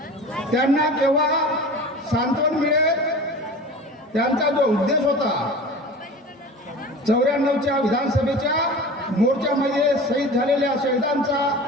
त्यांना केव्हा सांत्वन मिळेल, त्यांचा जो उद्देश होता 94च्या विधानसभेच्या मोर्चामध्ये शहीद झालेल्या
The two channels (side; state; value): both; normal; correlation 0.36